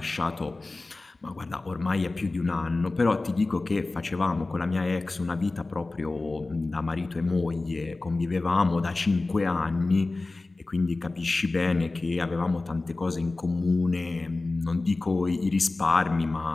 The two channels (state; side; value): quieter; right; 3.3 dB